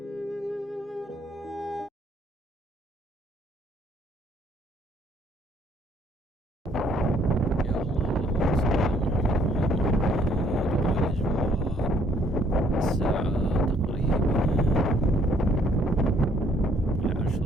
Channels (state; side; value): normal; both; correlation 0.64